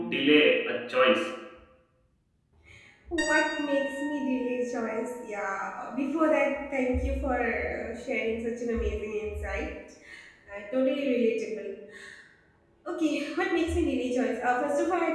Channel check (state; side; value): identical; both; correlation 1.00